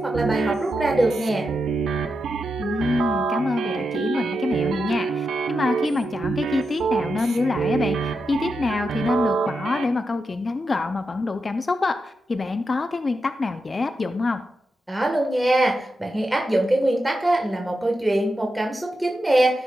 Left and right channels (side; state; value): both; normal; correlation 0.87